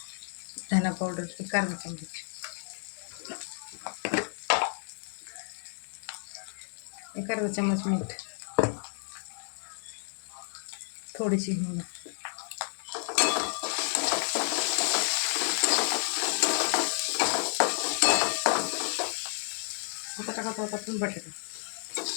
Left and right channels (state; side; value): silent; right; 57 dB below the other